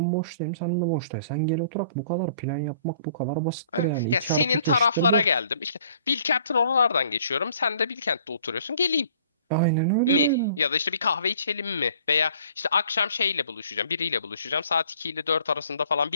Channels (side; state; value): both; inverted; correlation -0.56